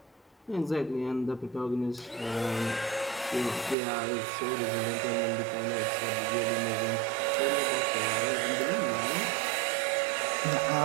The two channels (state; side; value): drops out; left; at 3.8 s